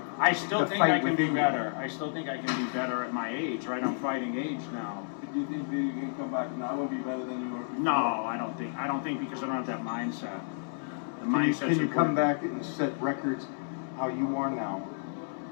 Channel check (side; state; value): right; silent; 57 dB below the other